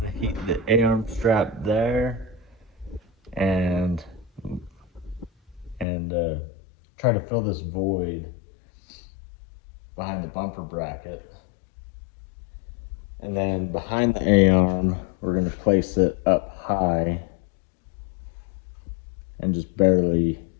Heat the A-arm strap there, and try to fill this void behind the bumper bracket. And then behind the A-arm, we're going to place it up high and just barely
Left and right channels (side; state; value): right; drops out; at 5.9 s